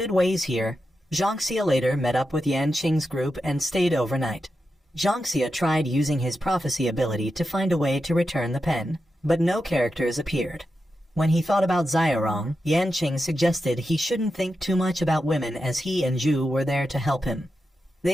ways here. Jiangxia later met up with Yanqing's group and stayed overnight. Jiangxia tried using his prophecy ability to find a way to return the pen, but no characters appeared. When he thought about Xiaorong, Yanqing suggested he shouldn't think too much about women as he and Zhu were there to help him.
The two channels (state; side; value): normal; both; correlation 0.89